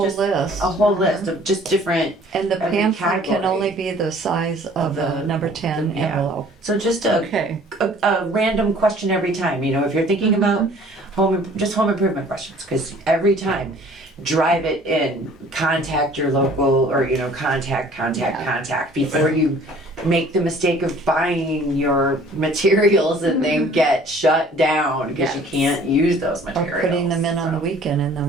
just list. A whole list of just different. And the every pamphlet can category. only be the size of the number 10 Yeah. envelope. So just Okay. a random question every time, you know, if you're thinking about home improvement questions, because every time, drive it in, contact your local, or, you know, contact before you make the mistake of buying your materials and then get shut down because you Yes. can't use those Or materials. putting them in on the So- weekend and then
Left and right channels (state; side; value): normal; both; correlation 0.53